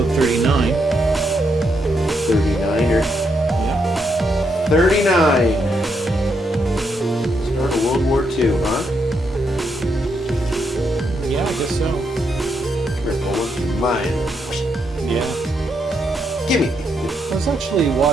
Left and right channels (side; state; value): both; normal; correlation 0.78